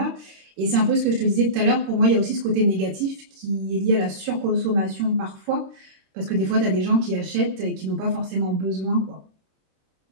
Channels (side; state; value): left; late; 26 ms